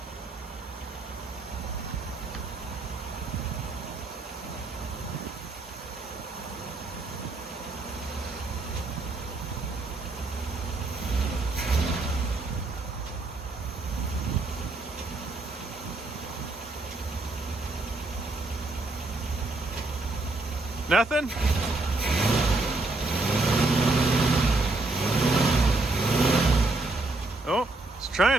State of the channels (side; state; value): left; quieter; 3.2 dB